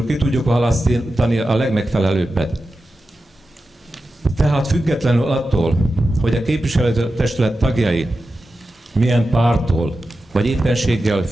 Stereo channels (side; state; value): both; normal; correlation 0.92